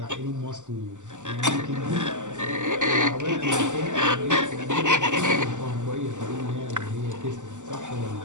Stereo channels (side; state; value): left; late; 0.85 ms